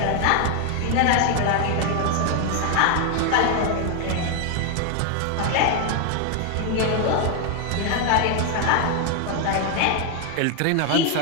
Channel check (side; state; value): both; different; correlation 0.01